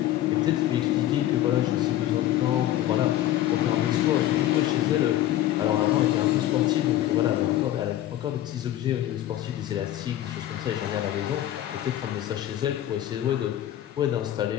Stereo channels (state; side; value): quieter; right; 13.1 dB